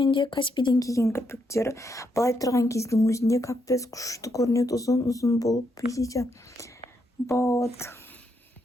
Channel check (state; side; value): normal; both; correlation 0.78